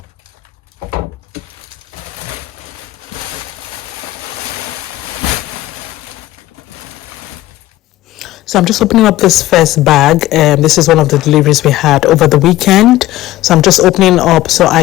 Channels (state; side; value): quieter; right; 16.0 dB